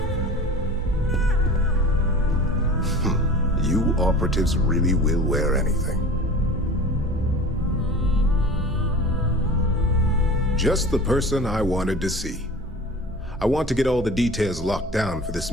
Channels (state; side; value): normal; both; correlation 0.37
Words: You operatives really will wear anything. Just the person I wanted to see. I want to get all the details locked down for this